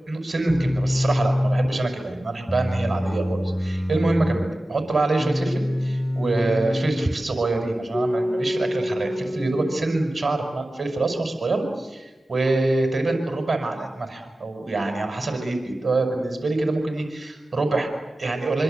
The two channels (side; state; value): both; normal; correlation 0.95